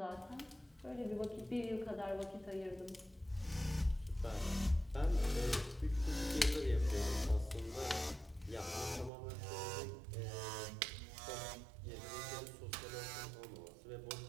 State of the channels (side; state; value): left; drops out; at 9.1 s